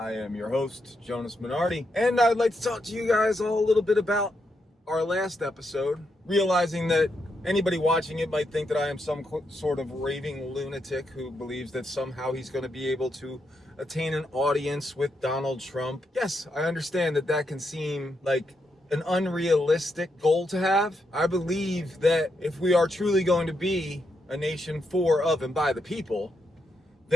am your host, Jonas Minardi, and I'd like to talk to you guys all a little bit about our last episode, realizing that anybody watching it might think that I am some sort of raving lunatic who believes that somehow he's going to be able to attain an audience with Donald Trump. Yes, I understand that that can seem like an unrealistic goal to have. I believe that if we are truly going to be a nation for, of, and by the people,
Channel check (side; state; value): both; normal; correlation 0.81